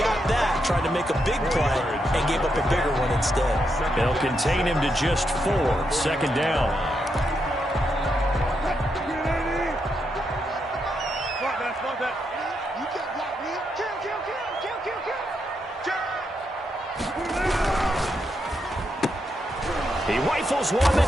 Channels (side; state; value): both; normal; correlation 0.81